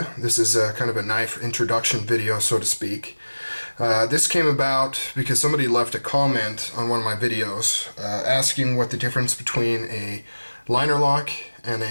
This is kind of a knife introduction video, so to speak. This came about because somebody left a comment on one of my videos asking what the difference between a liner lock and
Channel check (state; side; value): inverted; both; correlation -1.00